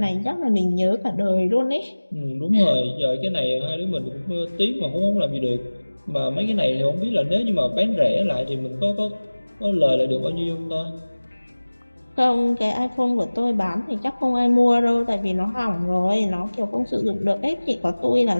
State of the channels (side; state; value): both; inverted; correlation -1.00